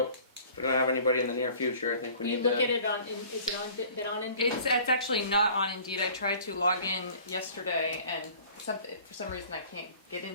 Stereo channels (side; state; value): both; inverted; correlation -0.49